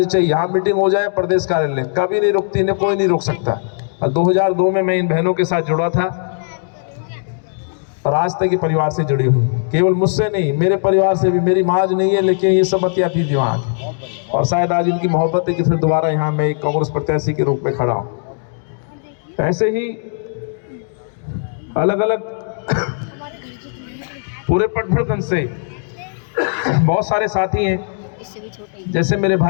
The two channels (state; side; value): silent; right; digital silence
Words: चाहिए। यहाँ मीटिंग हो जाए प्रदेश कार्यालय, कभी नहीं रुकती, इन्हें कोई नहीं रोक सकता। और 2002 में मैं इन बहनों के साथ जुड़ा था और आज तक ये परिवार से जुड़ी हुई, केवल मुझसे नहीं, मेरे परिवार से भी। मेरी माँ नहीं है, लेकिन ये सब बतिया थी दिमाग, और शायद आज इनकी मोहब्बत है कि फिर दोबारा यहाँ मैं एक कांग्रेस प्रत्याशी के रूप में खड़ा हूँ। ऐसे ही अलग अलग पूरे पटभरगंज से बहुत सारे साथी हैं, जैसे मेरे